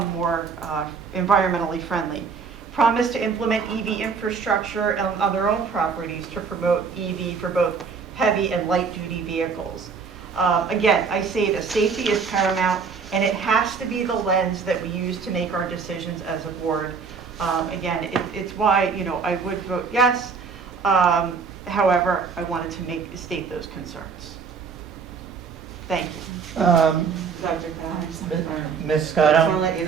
more environmentally friendly. Promise to implement EV infrastructure on their own properties to promote EV for both heavy and light duty vehicles. Again, I say that safety is paramount, and it has to be the lens that we use to make our decisions as a board. Again, it's why I would vote yes. However, I wanted to state those concerns. Thank you. Dr. Ms. I just want Scotto? to let you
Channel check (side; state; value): left; quieter; 5.5 dB